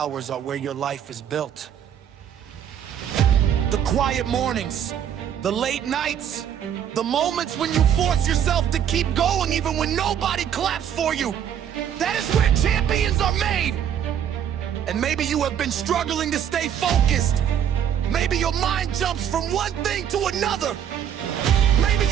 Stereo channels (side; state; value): left; quieter; 9.3 dB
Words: are where your life is built. The quiet mornings, the late nights, the moments when you force yourself to keep going even when nobody claps for you. That is where champions are made. And maybe you have been struggling to stay focused. Maybe your mind jumps from one thing to another. Maybe